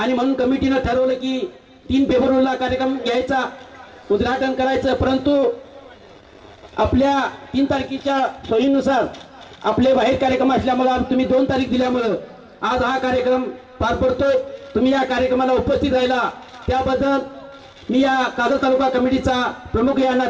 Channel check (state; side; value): identical; both; correlation 1.00